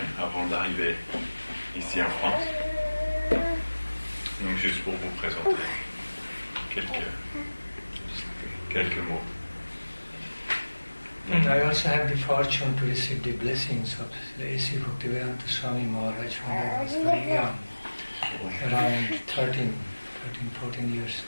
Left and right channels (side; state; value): both; inverted; correlation -1.00